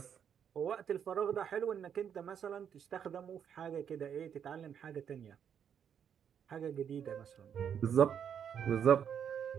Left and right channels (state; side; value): quieter; left; 8.2 dB